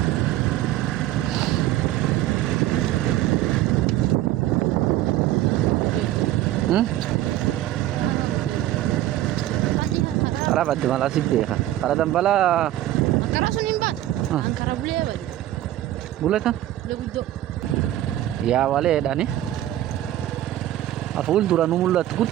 Para badde mala sibbeha. Para dambala Ankara sun imbat. Ankara bule bad. buleta. Le guddo. Ya wale dani. Aful duranu mullat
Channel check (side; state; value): left; quieter; 13.9 dB